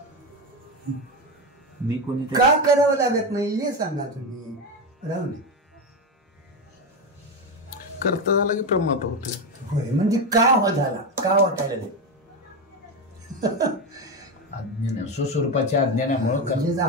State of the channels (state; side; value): normal; both; correlation 0.14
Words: मी कोणी का करावं लागत नाही हे सांगा तुम्ही. राहू नये. करता झाला की प्रमाद होते. होय म्हणजे का हो झाला का वाटायला नाही. अज्ञान स्वस्वरूपाच्या अज्ञानामुळं म्हणजे